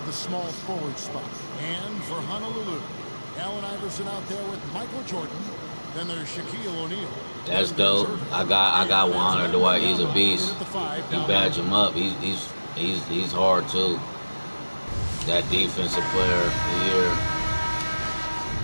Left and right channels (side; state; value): both; inverted; correlation -1.00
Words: the small forward spot. And for Honolulu, Allen Iverson out there with Michael Jordan. Then there's Shaquille O'Neal. That's dope. I got Juan Dwight. He's a beast. You badge him up. He's hard too. That defensive player of the year.